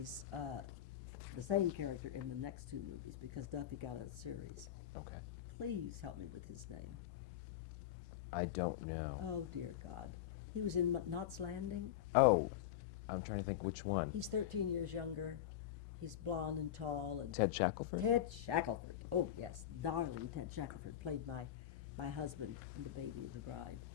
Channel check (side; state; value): right; quieter; 11.2 dB